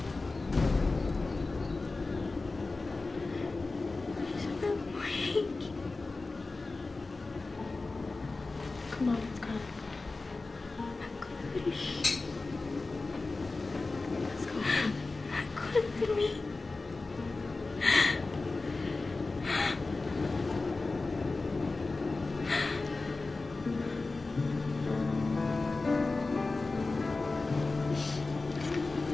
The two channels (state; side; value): quieter; right; 3.6 dB